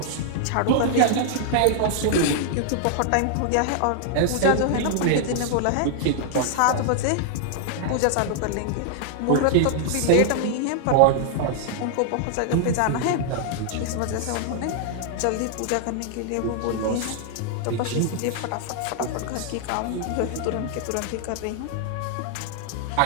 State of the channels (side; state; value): both; different; correlation -0.01